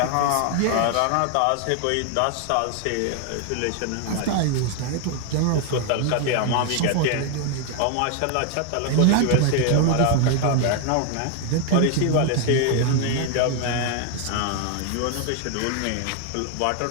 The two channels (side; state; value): both; different; correlation 0.00